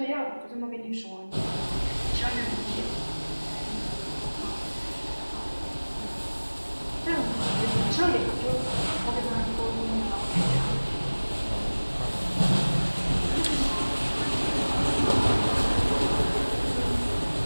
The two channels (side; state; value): both; inverted; correlation -1.00